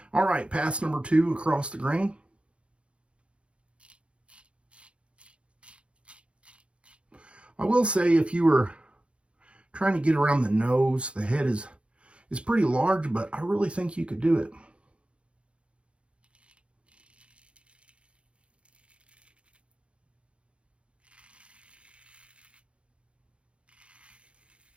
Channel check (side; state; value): left; late; 0.059 ms